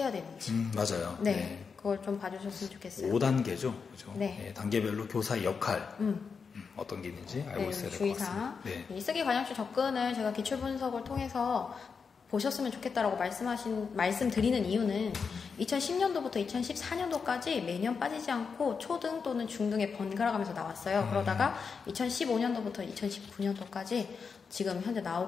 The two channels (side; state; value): right; quieter; 5.6 dB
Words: 되는지 맞아요. 네, 그걸 좀 봐주셨으면 좋겠어요. 5단계죠. 그죠? 네. 네, 단계별로 교사의 역할 어떤 게 있는지 알고 있어야 될 것 같습니다. 네. 이 쓰기 과정적 접근을 제가 기출분석을 통해서 보셨으면 좋겠다라고 말씀드리는 이유는 2010년도부터 2014년도까지 매년 빠지지 않고 초등 또는 중등에 번갈아 가면서 나왔어요. 그러다가 2015년도부터 2019년도까지 지금 현재